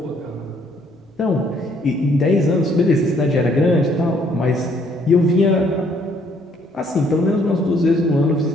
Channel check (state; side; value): normal; both; correlation 0.65